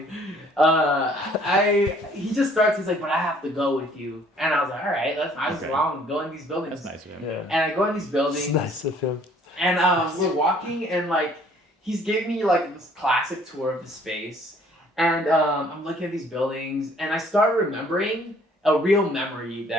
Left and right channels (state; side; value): normal; both; correlation 0.59